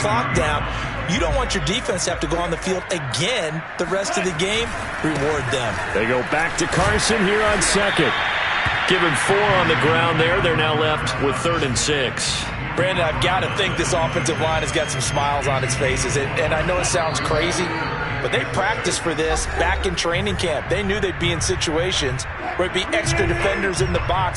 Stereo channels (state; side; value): identical; both; correlation 1.00